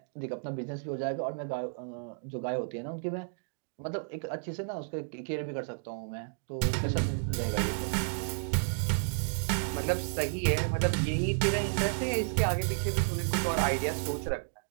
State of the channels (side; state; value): left; silent; digital silence